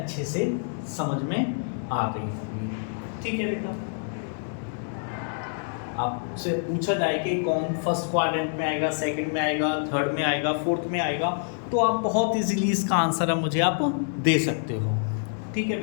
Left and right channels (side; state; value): right; silent; digital silence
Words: से समझ में आ गई होंगी। ठीक है बेटा, आपसे पूछा जाए कि कौन फर्स्ट क्वाड्रेंट में आएगा, सेकंड में आएगा, थर्ड में आएगा, फोर्थ में आएगा, तो आप बहुत इजीली इसका आंसर अब मुझे आप दे सकते हो। ठीक है